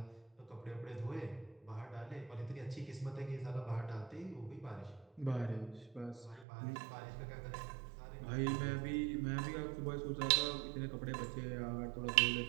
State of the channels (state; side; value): drops out; left; at 6.5 s